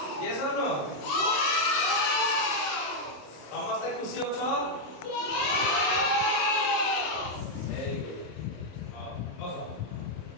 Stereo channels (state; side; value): late; right; 27 ms